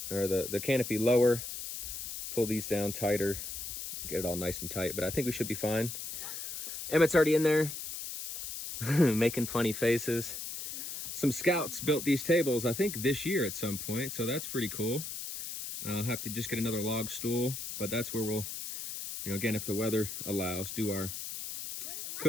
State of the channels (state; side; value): noise; left; hiss, 7 dB below the sound